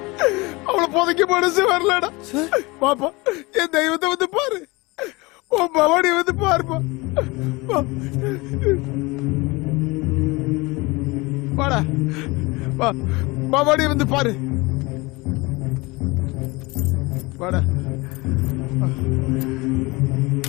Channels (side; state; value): right; quieter; 24.2 dB